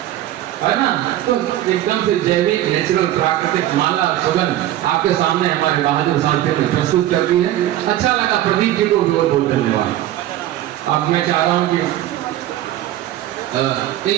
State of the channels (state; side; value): quieter; left; 13.6 dB